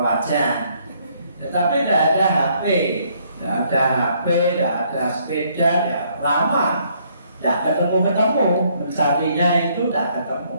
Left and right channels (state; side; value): inverted; both; correlation -0.67